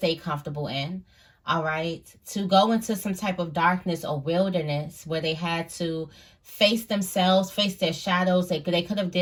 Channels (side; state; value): both; identical; correlation 1.00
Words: comfortable in, all right? To go into some type of darkness or wilderness where they had to face themselves, face their shadows. They could have